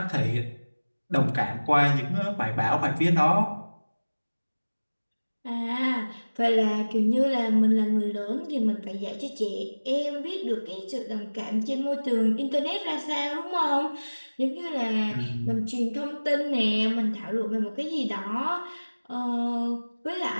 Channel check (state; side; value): inverted; both; correlation -1.00